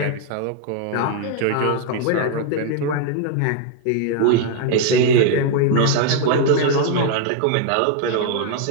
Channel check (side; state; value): both; different; correlation 0.00